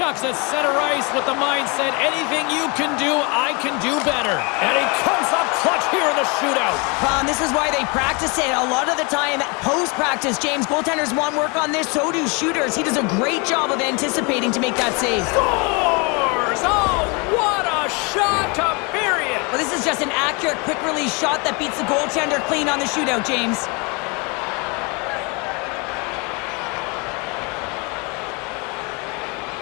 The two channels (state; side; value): quieter; right; 30.5 dB